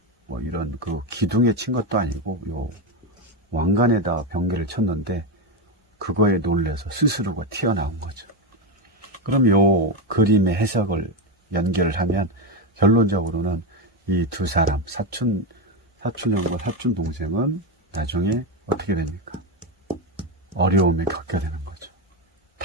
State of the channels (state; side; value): normal; both; correlation 0.10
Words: 그 기둥에 친 것도 아니고 왕관에다 번개를 쳤는데 그거에 놀래서 스스로가 튀어나온 거죠. 그럼 요 그림의 해석을 연결을 하면 결론적으로는 이 두 사람, 사촌 사촌 형과 사촌 동생은 나중에 어떻게 됩니까? 어려움에 겪게 되는 거죠.